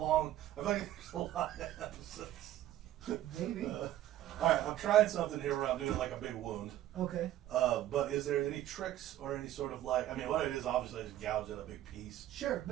I feel like there's a lot of episodes. Maybe. All right, I'm trying something here where I'm doing like a big wound. Okay. But is there any tricks or any sort of like? I mean, what it is obviously is gouge at a big piece. Sure,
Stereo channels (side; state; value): left; quieter; 13.1 dB